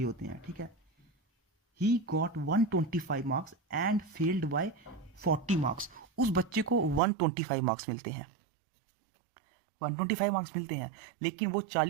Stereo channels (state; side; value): drops out; left; at 7.0 s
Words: होते हैं। ठीक है, he got 125 marks and failed by 40 marks. उस बच्चे को 125 मार्क्स मिलते हैं, 125 मार्क्स मिलते हैं, लेकिन वो